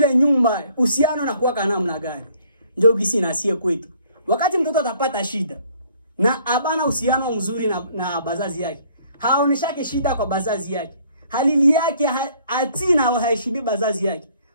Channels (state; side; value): inverted; both; correlation -0.61